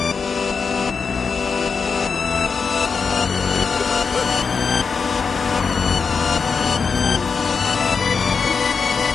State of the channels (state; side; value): quieter; right; 5.4 dB